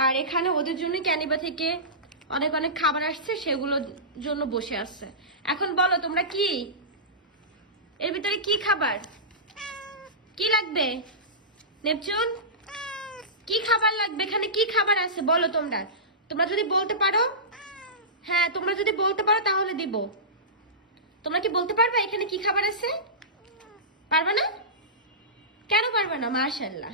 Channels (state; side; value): normal; both; correlation -0.20